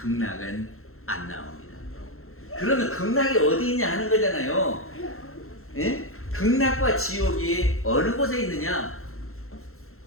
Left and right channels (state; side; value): late; right; 0.62 ms